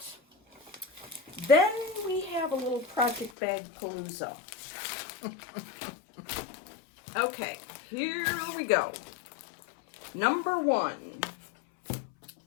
Then we have a little project bag palooza. Okay, here we go. Number 1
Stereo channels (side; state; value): right; drops out; at 3.3 s